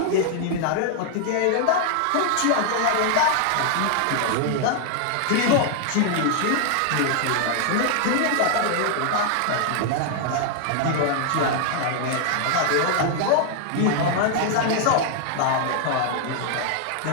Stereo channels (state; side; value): different; both; correlation 0.00